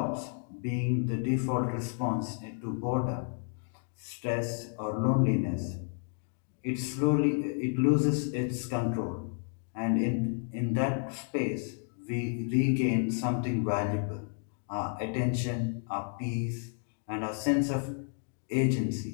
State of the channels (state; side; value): silent; right; 56 dB below the other